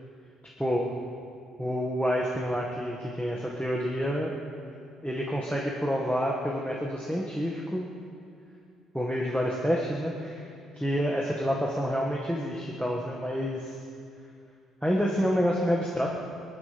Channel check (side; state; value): both; normal; correlation 0.85